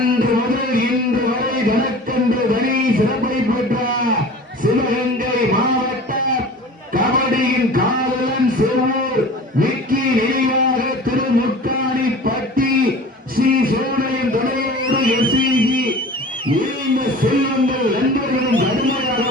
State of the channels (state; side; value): normal; both; correlation 0.40